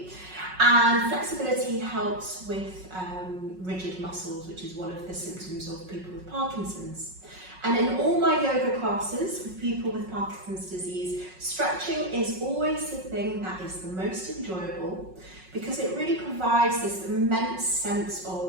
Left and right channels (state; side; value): late; left; 5.4 ms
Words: and flexibility helps with rigid muscles, which is one of the symptoms of people with Parkinson's. And in all my yoga classes with people with Parkinson's disease, stretching is always the thing that is the most enjoyable because it really provides this immense sense